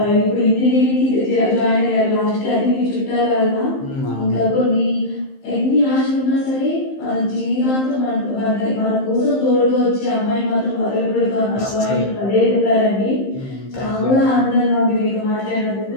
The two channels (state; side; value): late; right; 15 ms